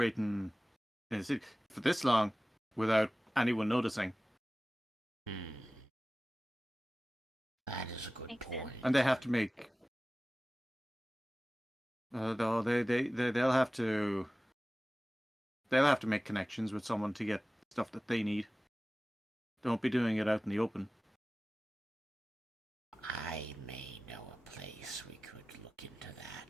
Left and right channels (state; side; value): normal; both; correlation 0.97